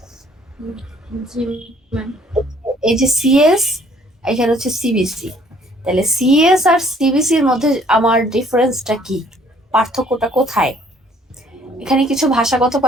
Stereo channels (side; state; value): both; normal; correlation 0.60